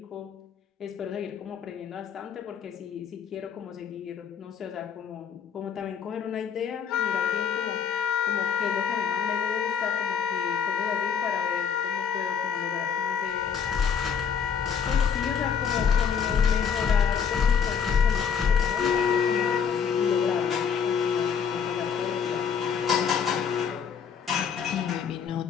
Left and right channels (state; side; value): quieter; right; 7.0 dB